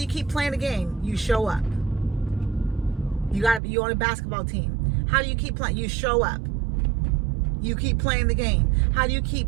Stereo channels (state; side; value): drops out; left; at 3.6 s